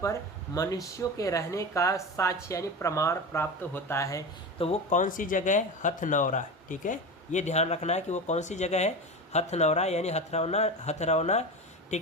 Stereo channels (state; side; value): normal; both; correlation 0.25